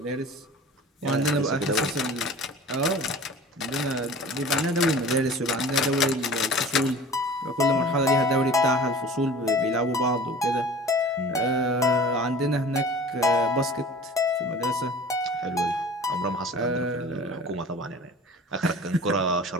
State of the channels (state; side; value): normal; both; correlation 0.42